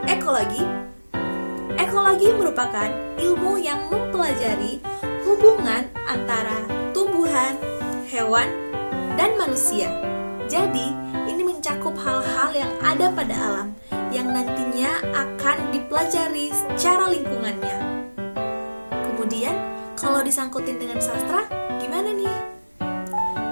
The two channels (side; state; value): both; inverted; correlation -1.00